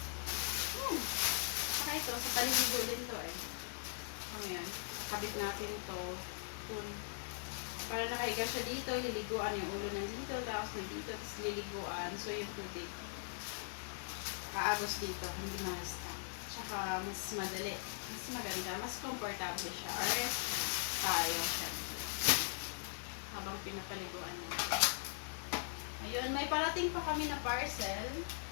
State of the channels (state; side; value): silent; right; digital silence